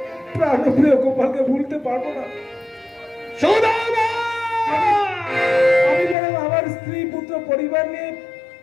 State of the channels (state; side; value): drops out; right; at 6.2 s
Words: প্রাণপ্রিয় গোপালকে ভুলতে পারবো না। সুদামা! আমি যেন আমার স্ত্রী পুত্র পরিবার নিয়ে